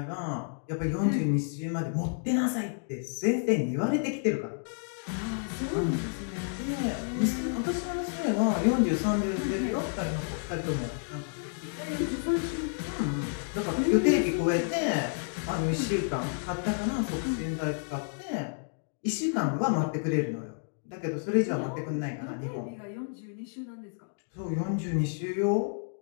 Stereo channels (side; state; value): right; silent; digital silence